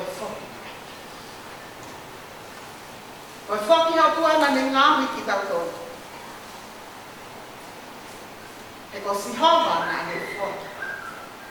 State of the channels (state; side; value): identical; both; correlation 1.00